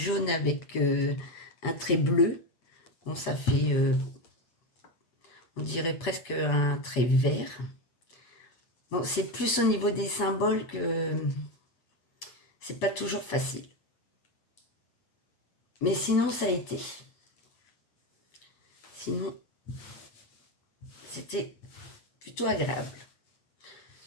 avec un trait bleu. Bon, ça fait, on dirait presque un trait vert. Bon, c'est plus au niveau des symboles que c'est pas toujours facile. Mais sinon, ça a été. Sinon, c'était plutôt agréable.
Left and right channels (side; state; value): right; late; 8.2 ms